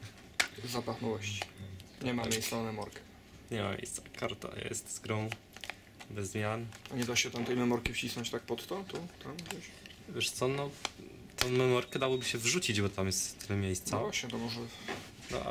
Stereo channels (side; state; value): both; identical; correlation 1.00